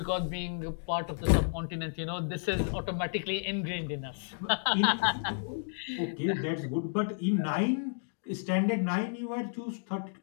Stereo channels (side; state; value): right; silent; digital silence